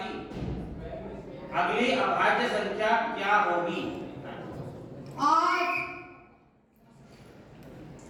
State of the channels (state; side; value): identical; both; correlation 1.00